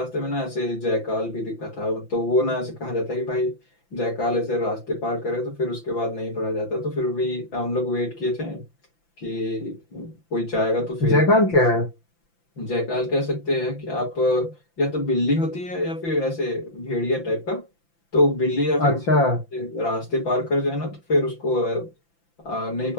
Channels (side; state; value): right; late; 5.9 ms